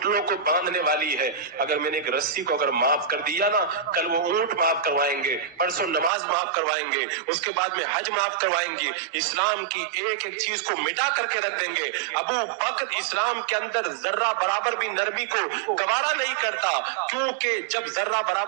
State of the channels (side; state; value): left; drops out; at 6.1 s